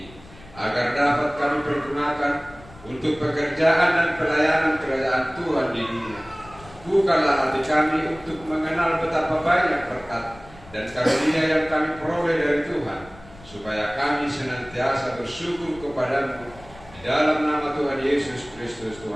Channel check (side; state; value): left; noise; rumble, 21 dB below the sound